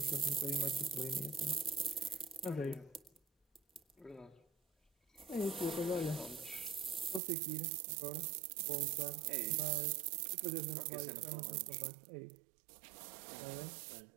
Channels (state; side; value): drops out; left; at 7.2 s